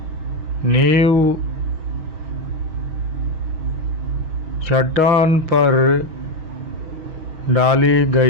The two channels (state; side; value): late; left; 6.3 ms